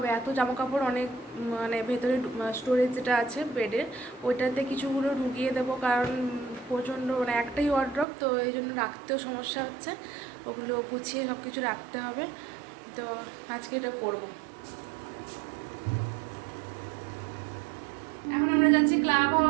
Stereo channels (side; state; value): left; drops out; at 8.1 s